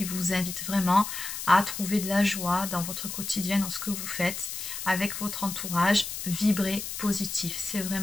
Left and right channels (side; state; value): left; noise; hiss, 6 dB below the sound